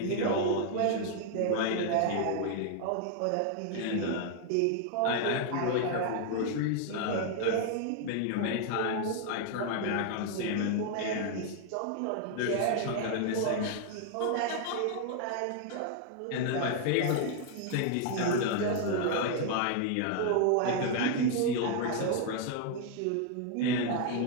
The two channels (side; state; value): both; different; correlation 0.00